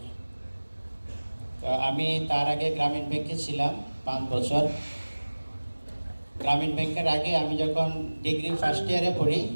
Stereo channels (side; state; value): both; inverted; correlation -1.00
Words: তো আমি তার আগে গ্রামীণ ব্যাংকে ছিলাম 5 বছর। গ্রামীণ ব্যাংকের আগে আমি যখন ডিগ্রি ফার্স্ট ইয়ারে পড়ি,